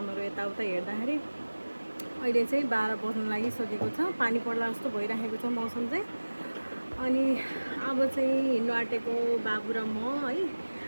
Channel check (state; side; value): inverted; both; correlation -1.00